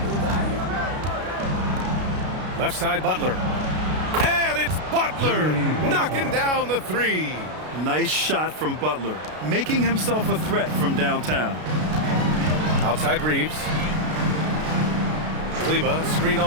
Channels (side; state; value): left; late; 33 ms